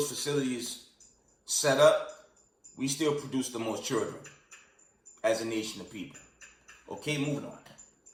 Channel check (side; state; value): both; identical; correlation 1.00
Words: facilities set up, we still produce the most children as a nation of people. Okay, moving on.